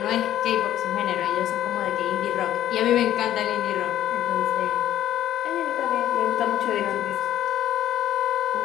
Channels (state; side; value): quieter; right; 12.1 dB